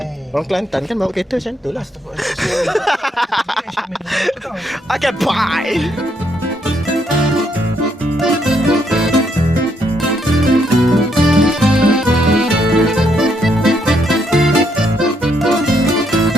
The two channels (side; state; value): both; normal; correlation 0.75